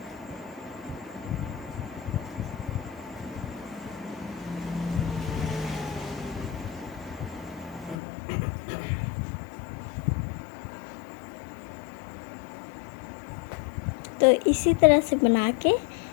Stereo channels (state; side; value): drops out; right; at 8.0 s